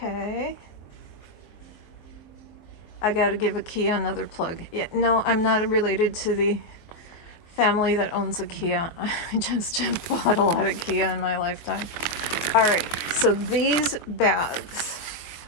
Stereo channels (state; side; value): late; right; 23 ms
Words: I gotta give IKEA another plug. Yeah, no, I'm not related to the family that owns IKEA. I just have bought a lot of IKEA in my lifetime. All right, so these bags,